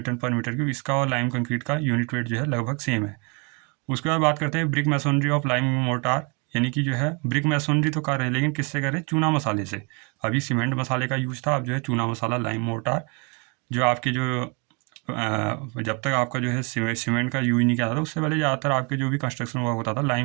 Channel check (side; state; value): left; quieter; 32.3 dB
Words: पर मीटर क्यूब इसका और लाइम कंक्रीट का यूनिट वेट जो है लगभग सेम है। उसके बाद बात करते हैं brick masonry of lime mortar, यानी कि जो है ब्रिक मैसनरी तो कर रहे हैं लेकिन किससे कर रहे हैं, चूना मसाले से। अभी सीमेंट मसाले का यूज था, अब जो है चूना मसाला लाइम मोर्टार, जो आपके जो जब तक आपका जो है सीमेंट का यूज नहीं किया था उससे पहले ज़्यादातर आपके जो भी कंस्ट्रक्शन वर्क होता था